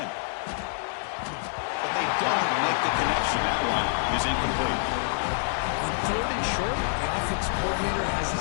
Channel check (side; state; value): right; silent; 60 dB below the other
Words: But they don't make the connection. That one is incomplete. On 3rd and short, the offense coordinator has